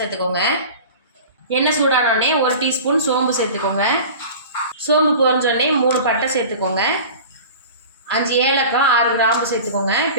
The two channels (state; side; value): inverted; both; correlation -0.37